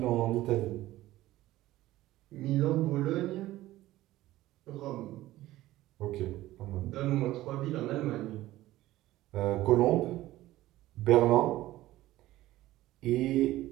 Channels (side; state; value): left; quieter; 16.1 dB